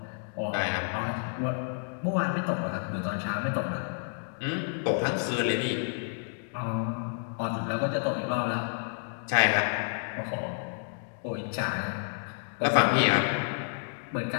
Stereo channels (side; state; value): right; silent; digital silence